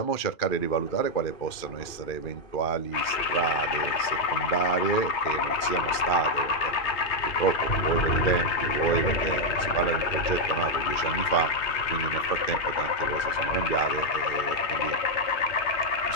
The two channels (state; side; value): late; right; 2.4 ms